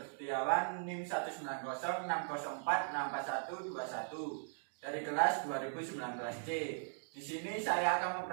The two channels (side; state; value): left; silent; digital silence